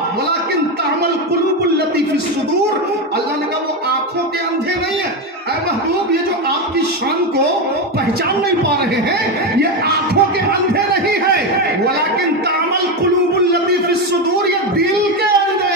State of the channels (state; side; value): normal; both; correlation 0.12